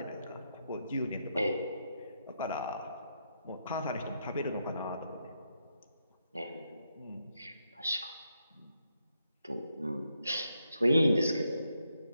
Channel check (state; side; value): inverted; both; correlation -0.80